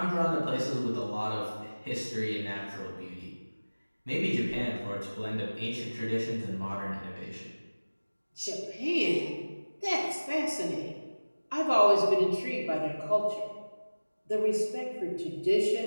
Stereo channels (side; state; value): both; inverted; correlation -1.00